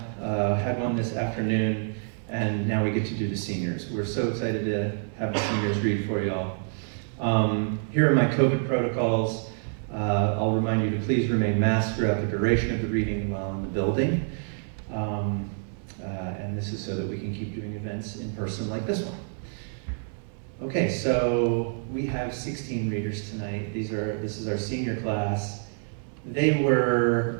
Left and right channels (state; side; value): silent; left; 60 dB below the other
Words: Had one this afternoon, and now we get to do the seniors. We're so excited to have the seniors read for y'all. Here are my COVID protocols. I'll remind you to please remain masked throughout the duration of the reading while in the building. And this is so that we can keep doing events in person like this one. Okay, so we have 16 readers tonight. This is our senior class. They were